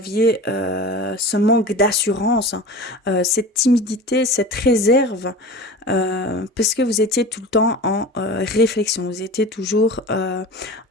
ce manque d'assurance, cette timidité, cette réserve, parce que vous étiez tout le temps en réflexion. Vous étiez toujours,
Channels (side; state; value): both; normal; correlation 0.35